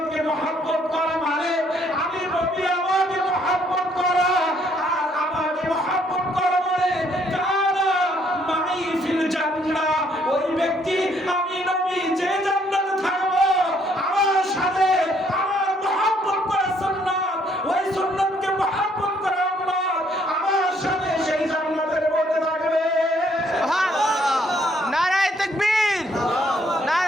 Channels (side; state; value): both; normal; correlation 0.67